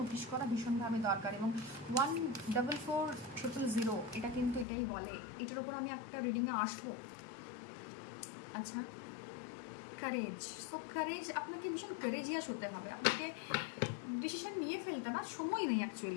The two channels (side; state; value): right; drops out; at 4.7 s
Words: নোটিস করা ভীষণভাবে দরকার। এবং 144000 এটা কিন্তু এটাই বলে। এটার ওপর আমি একটা রিডিংয়ে আসবো। আচ্ছা, কারেজ। সো কারেজ, আপনাকে ভীষণ কারেজিয়াস হতে হবে, আপনাকে ডিসিশন নিয়ে ফেলতে না সময় নেই